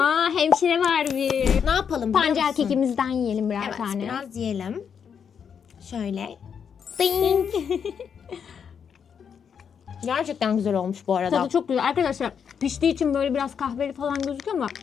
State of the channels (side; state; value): right; quieter; 7.2 dB